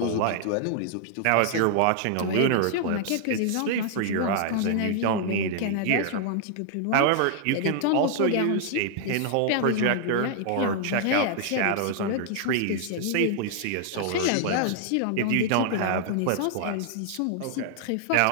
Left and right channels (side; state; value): both; different; correlation -0.01